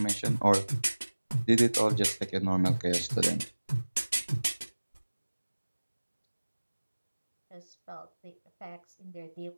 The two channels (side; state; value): both; inverted; correlation -1.00